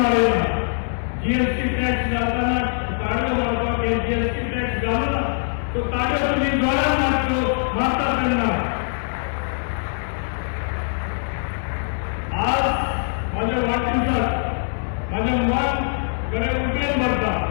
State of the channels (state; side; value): silent; right; digital silence